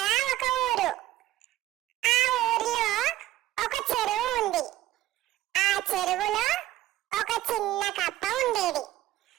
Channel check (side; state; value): left; quieter; 15.3 dB